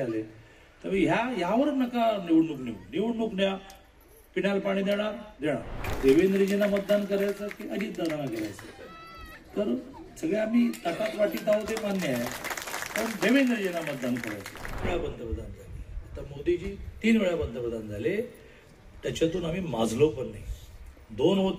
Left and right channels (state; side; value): identical; both; correlation 1.00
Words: तर यावर नका निवडणूक न्या. पिण्याला पाणी देणार. देवेंद्रजींना मतदान करायचं की अजितदादांना करायचं, तर सगळे आम्ही ताटात वाटीत आहोत ते मान्य आहे, पण देवेंद्रजींना मतदान करायचं. वेळा पंतप्रधान झाले, आता मोदीजी 3 वेळा पंतप्रधान झाले, त्याच्यातून आम्ही माजलो पण नाही. 2